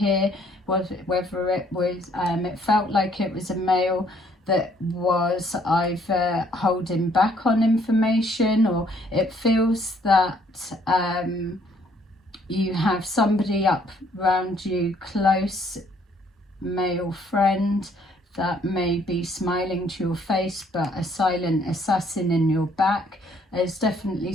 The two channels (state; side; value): normal; both; correlation 0.64